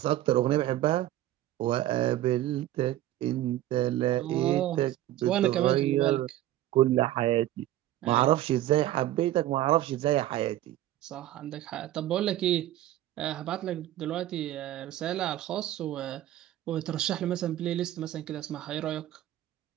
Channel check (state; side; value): quieter; left; 13.9 dB